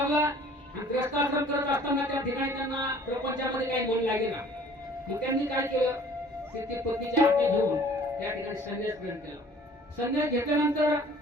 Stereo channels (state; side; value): normal; both; correlation 0.52